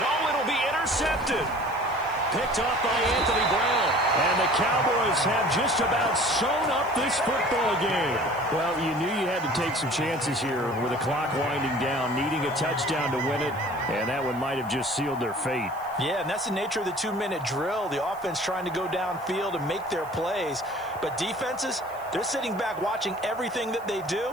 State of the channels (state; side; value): noise; right; hiss, 24 dB below the sound